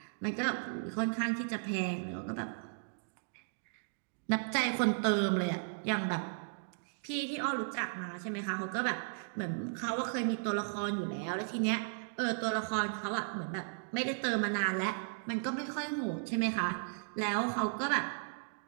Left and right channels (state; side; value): silent; left; digital silence